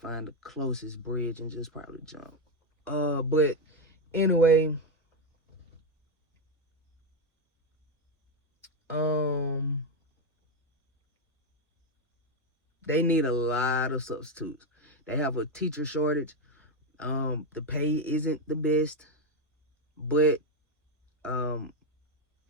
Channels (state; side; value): normal; both; correlation 0.07